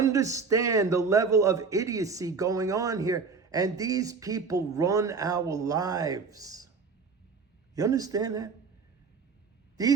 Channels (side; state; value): left; quieter; 5.0 dB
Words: the level of idiocy going on here? And these people run our lives. You understand that?